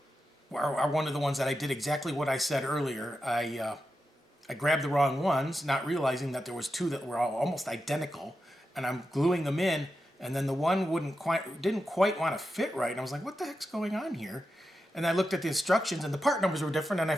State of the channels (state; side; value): normal; both; correlation 0.89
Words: are one of the ones that I did exactly what I said earlier. I grabbed the wrong ones, not realizing that there was two that were all almost identical, and I'm gluing them in, and then the one didn't quite want to fit right, and I was like, what the heck's going on here? And I looked at the instructions, and the part numbers were different, and I